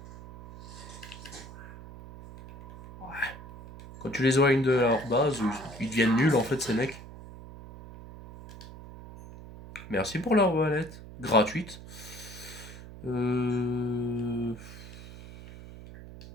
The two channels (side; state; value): right; noise; hum, 14 dB below the sound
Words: Quand tu les éloignes de leur base, ils deviennent nuls en fait ces mecs. Merci pour leur valette. Gratuite.